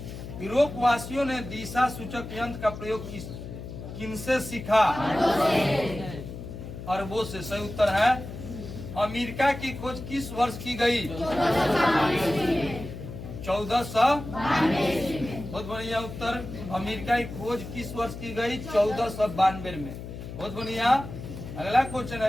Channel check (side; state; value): left; noise; hum, 10 dB below the sound